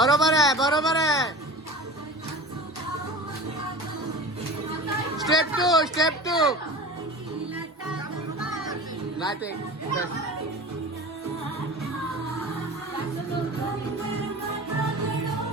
आहे बरोबर आहे. स्टेप टू नाही ते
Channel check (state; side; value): normal; both; correlation 0.36